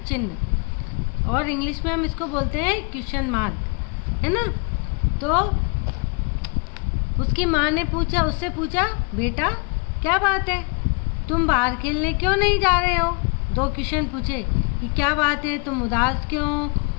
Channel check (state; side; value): quieter; right; 34.5 dB